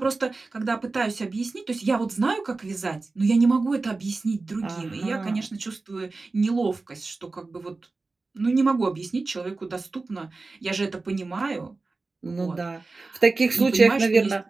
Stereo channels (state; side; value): quieter; left; 3.6 dB